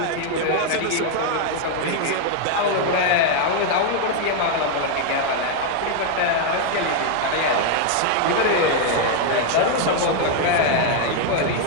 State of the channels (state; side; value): different; both; correlation 0.00